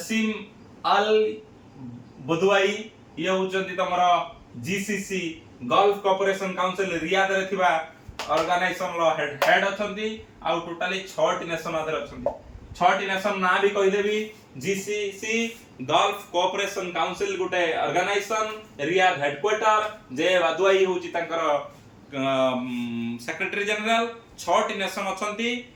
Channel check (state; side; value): identical; both; correlation 1.00